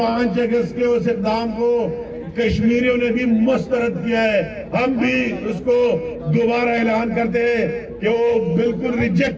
اگست کے اس اقدام کو کشمیریوں نے بھی مسترد کیا ہے, ہم بھی اس کو دوبارہ اعلان کرتے ہیں کہ وہ بالکل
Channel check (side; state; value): both; identical; correlation 1.00